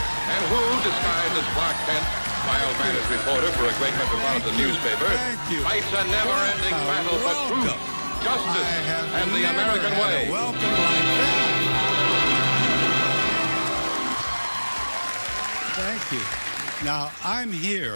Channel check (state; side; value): inverted; both; correlation -1.00